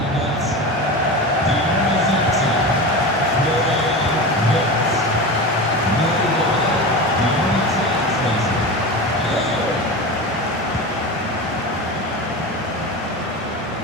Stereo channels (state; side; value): normal; both; correlation 0.26